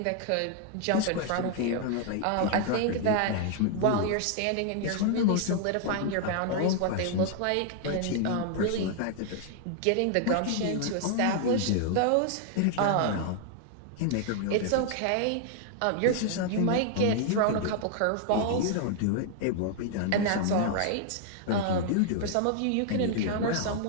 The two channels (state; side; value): different; both; correlation 0.00